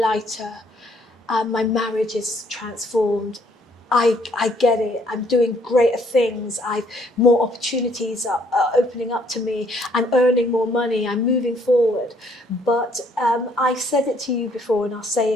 my marriage is transformed. I get it. I'm doing greater things. More opportunities are opening up to me. I'm earning more money. I'm moving forward. But I said it to you before, and I'll say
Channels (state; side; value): normal; both; correlation 0.65